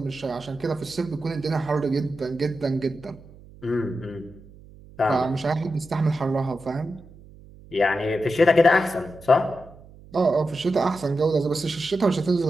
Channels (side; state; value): right; noise; hum, 21 dB below the sound